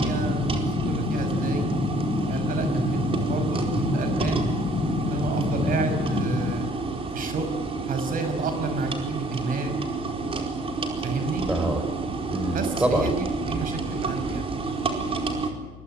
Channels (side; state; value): left; noise; hum, 17 dB below the sound